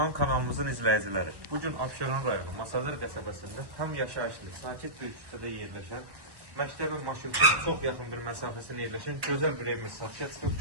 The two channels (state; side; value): late; left; 1.1 ms